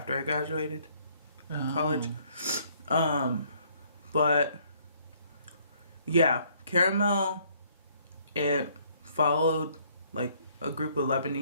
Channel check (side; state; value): both; inverted; correlation -0.64